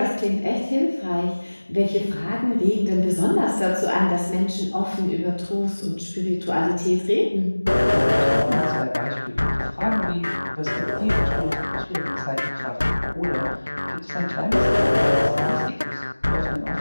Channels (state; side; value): inverted; both; correlation -1.00